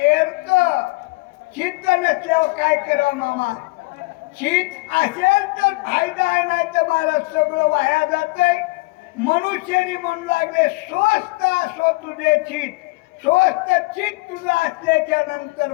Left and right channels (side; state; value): right; quieter; 24.6 dB